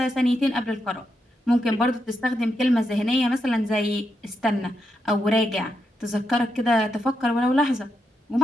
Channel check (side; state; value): both; normal; correlation 0.83